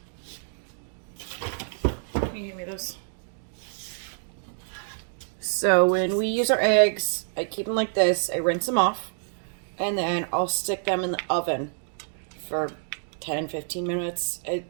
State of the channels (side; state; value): left; silent; digital silence